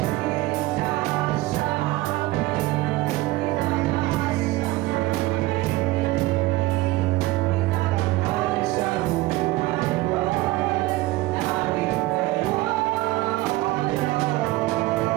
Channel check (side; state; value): left; quieter; 18.8 dB